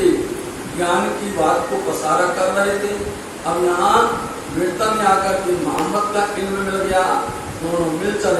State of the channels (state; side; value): identical; both; correlation 1.00